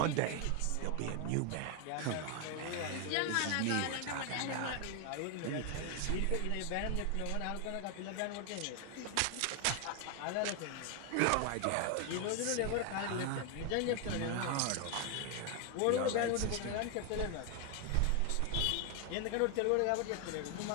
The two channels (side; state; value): both; different; correlation 0.01